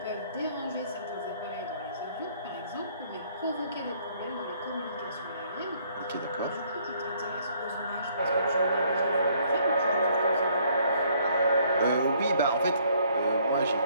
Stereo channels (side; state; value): both; inverted; correlation -0.64